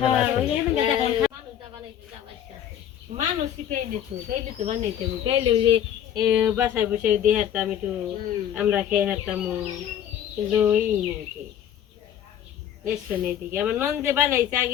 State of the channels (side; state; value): right; quieter; 10.1 dB